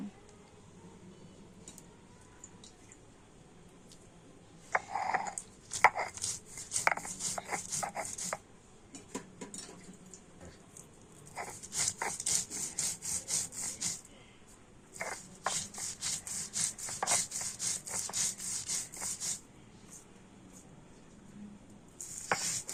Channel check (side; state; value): both; identical; correlation 1.00